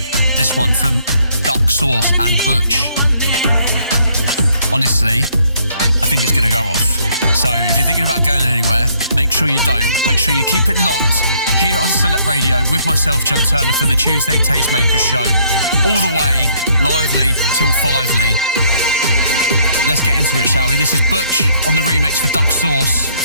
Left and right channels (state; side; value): inverted; both; correlation -0.66